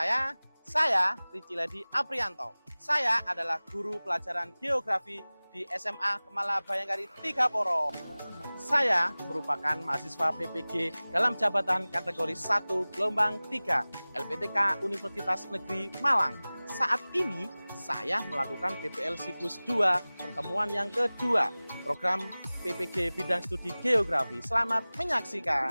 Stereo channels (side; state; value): both; inverted; correlation -0.99